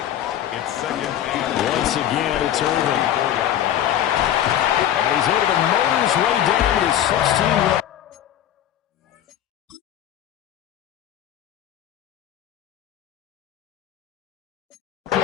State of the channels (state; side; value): quieter; right; 11.2 dB